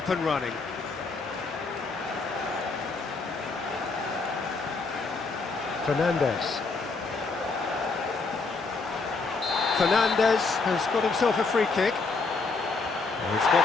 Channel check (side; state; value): right; quieter; 4.1 dB